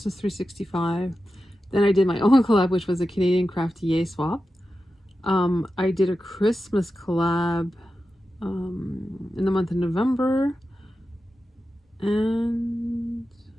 365. Then I did my own collab, which was a Canadian Crafty Yay swap. I did a Christmas collab in the month of November. And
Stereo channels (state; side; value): normal; both; correlation 0.92